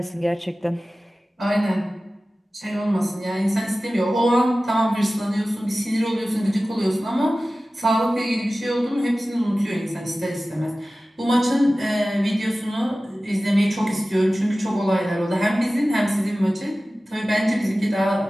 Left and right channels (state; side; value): normal; both; correlation 0.96